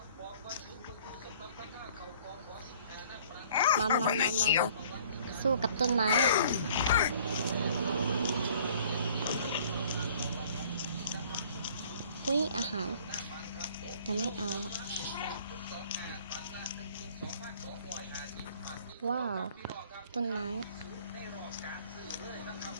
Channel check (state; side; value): inverted; both; correlation -0.55